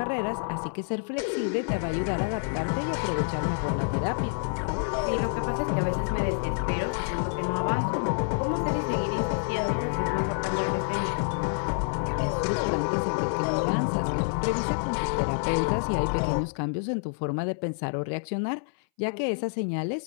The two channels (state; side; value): silent; right; 59 dB below the other